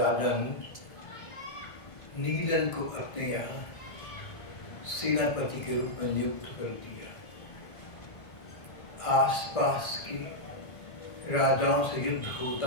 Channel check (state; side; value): late; right; 1.6 ms